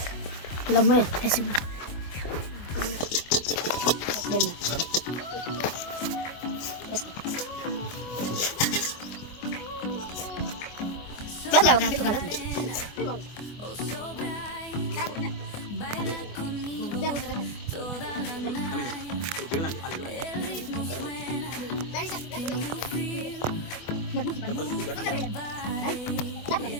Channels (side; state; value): right; late; 24 ms